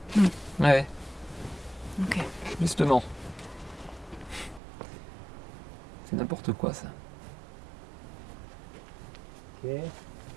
Ouais, Ok. justement. C'est n'importe quoi ça. Ok, il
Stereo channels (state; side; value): drops out; left; at 4.6 s